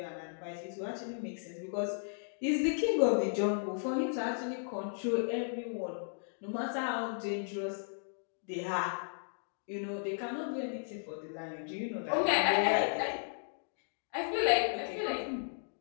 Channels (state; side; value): silent; right; digital silence